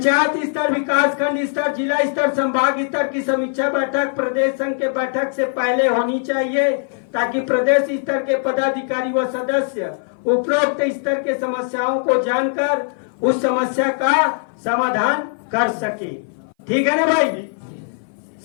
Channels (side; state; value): right; silent; 59 dB below the other